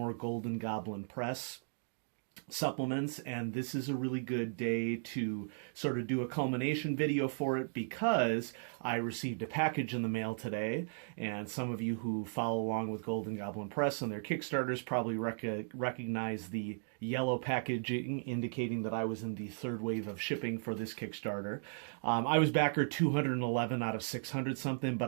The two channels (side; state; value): left; silent; digital silence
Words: Golden Goblin Press supplements, and this is a really good day to sort of do a culmination video for it because I received a package in the mail today, and some of you who follow along with Golden Goblin Press and their Kickstarters probably recognize the yellow packaging indicating that I was in the third wave of shipping for this Kickstarter. I was backer 211 out of 600 something, but